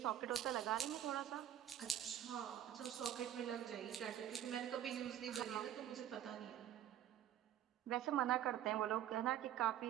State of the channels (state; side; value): quieter; left; 11.2 dB